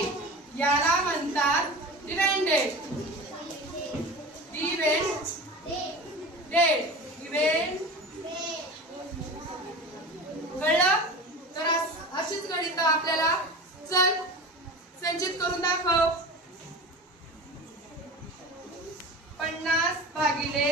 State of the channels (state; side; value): normal; both; correlation 0.33